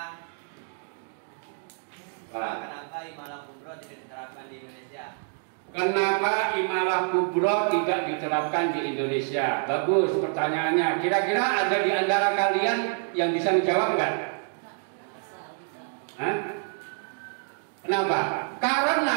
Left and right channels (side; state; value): left; silent; 56 dB below the other